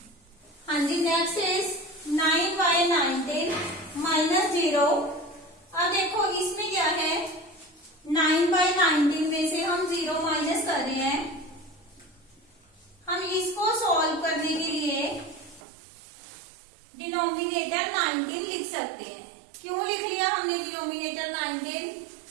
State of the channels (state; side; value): drops out; left; at 15.6 s